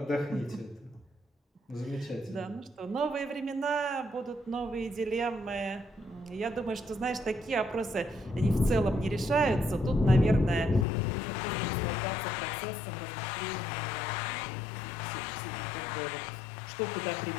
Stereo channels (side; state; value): right; drops out; at 10.9 s